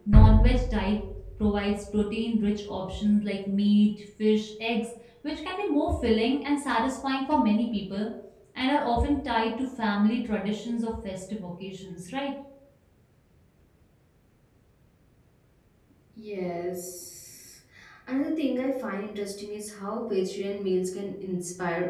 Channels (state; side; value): identical; both; correlation 1.00